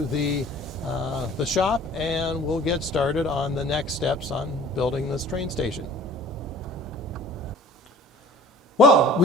the shop and we'll get started on the next steps on building this train station. Well,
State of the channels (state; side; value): normal; both; correlation 0.48